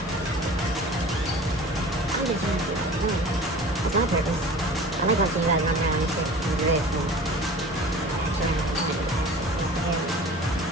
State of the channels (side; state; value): both; normal; correlation 0.41